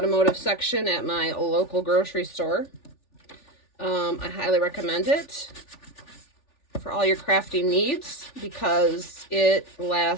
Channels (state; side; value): late; right; 3.4 ms